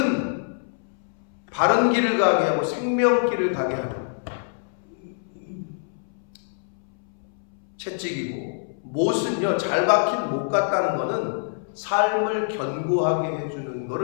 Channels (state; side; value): silent; right; 62 dB below the other